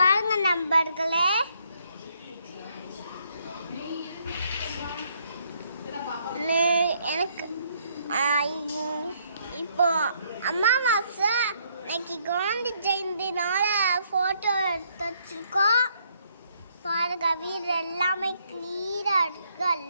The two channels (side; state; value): both; inverted; correlation -0.70